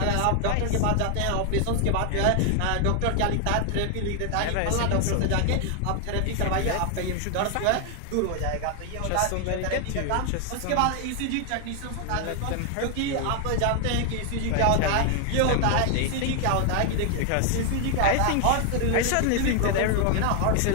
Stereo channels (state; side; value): different; both; correlation 0.00